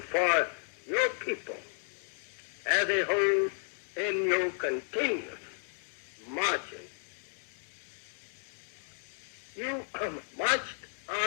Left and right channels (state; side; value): silent; right; 56 dB below the other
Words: for your people as a whole in your continuous marching? You marched